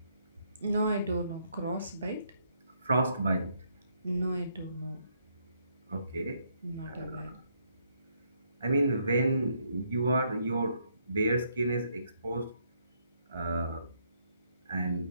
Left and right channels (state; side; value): inverted; both; correlation -0.73